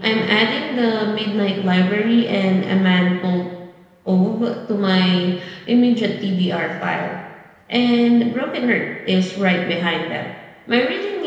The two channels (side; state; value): both; identical; correlation 1.00